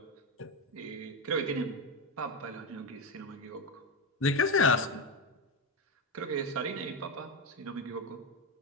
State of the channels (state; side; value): normal; both; correlation 0.12